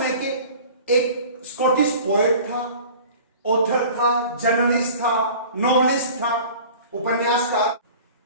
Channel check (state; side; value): inverted; both; correlation -0.43